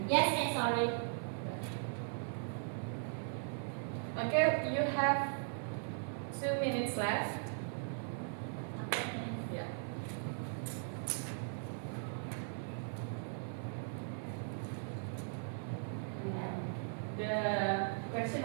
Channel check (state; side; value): silent; left; 52 dB below the other